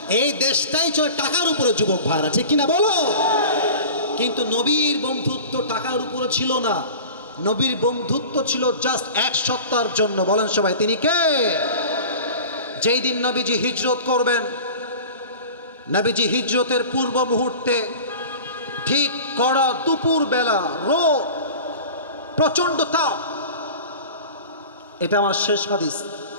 এই দেশটাই চলে টাকার উপরে যুবক ভাইরা, ঠিক কিনা বলো? কিন্তু নবীর বন্ধুত্ব টাকার উপরে ছিল না, নবীর বন্ধুত্ব ছিল জাস্ট এক সত্তার জন্য। বলেন সবাই তিনি কে? যেই দিন নবীজি হিজরত করবেন, নবীজি হিজরতের পূর্ব মুহূর্তে ঠিক কড়া দুপুর বেলা, রোদ, প্রচন্ড তাপ। এটা আমার শেষ হাদিস,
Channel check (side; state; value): both; inverted; correlation -0.37